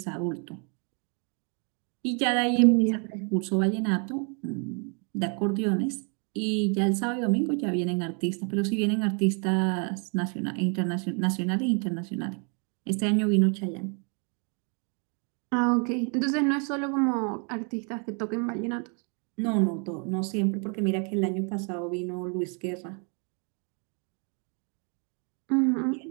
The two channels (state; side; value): quieter; left; 38.2 dB